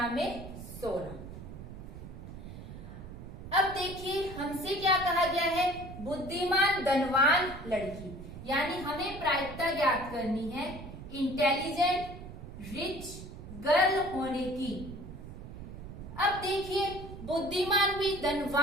अब देखिए हमसे क्या कहा गया है, बुद्धिमान धनवान लड़की, यानी हमें प्रायिकता ज्ञात करनी है इंटेलिजेंट रिच गर्ल होने की। अब देखिए बुद्धिमान भी,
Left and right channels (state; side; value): noise; right; rumble, 12 dB below the sound